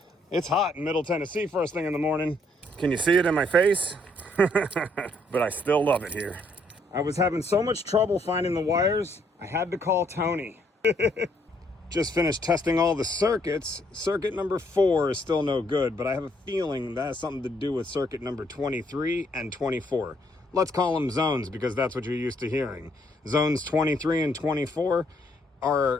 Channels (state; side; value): normal; both; correlation 0.69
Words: It's hot in Middle Tennessee first thing in the morning. Can you see it in my face? But I still love it here. I was having so much trouble finding the wires, I had to call Tony. Just finished testing all the circuits. Circuit number 4 is still no good, but I have a feeling that has something to do with circuit number 23 and 24. Let's call them zones because that's what you're used to hearing. Zones 23 and 24